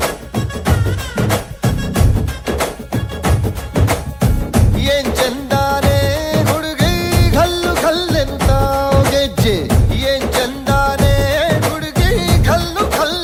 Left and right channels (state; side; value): identical; both; correlation 1.00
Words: ಏನ್ ಚಂದಾನೆ ಹುಡುಗಿ ಘಲ್ಲು ಘಲ್ಲೆನು ತಾವು ಗೆಜ್ಜೆ ಏನ್ ಚಂದಾನೆ ಹುಡುಗಿ ಘಲ್ಲು